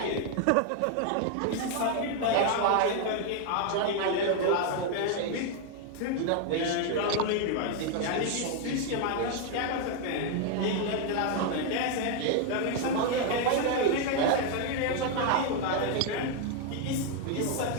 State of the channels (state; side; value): different; both; correlation 0.01